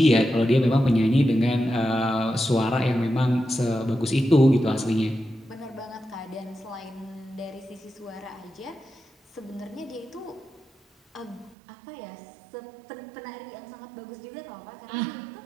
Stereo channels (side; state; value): left; drops out; at 11.6 s